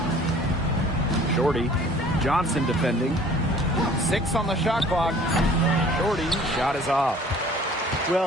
Shorty. Johnson defending. 6 on the shot clock. Shorty, shot is off.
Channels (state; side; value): normal; both; correlation 0.51